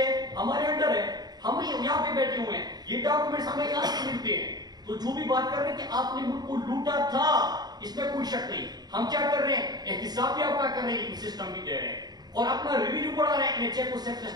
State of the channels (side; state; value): left; late; 0.20 ms